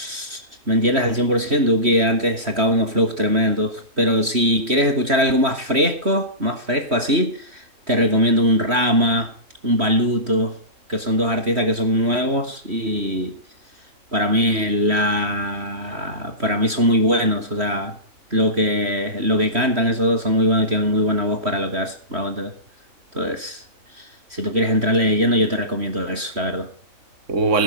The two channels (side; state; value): left; late; 3.1 ms